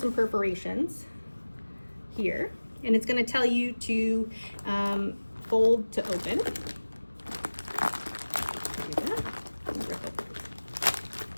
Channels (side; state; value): both; inverted; correlation -1.00